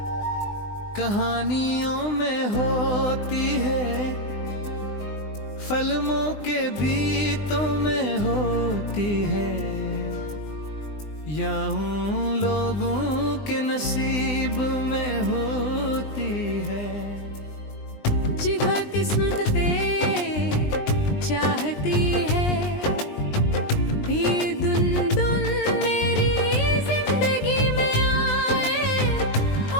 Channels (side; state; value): right; late; 20 ms